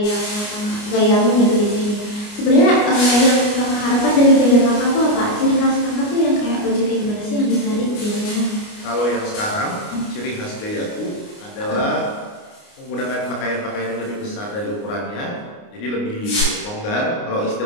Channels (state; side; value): late; right; 29 ms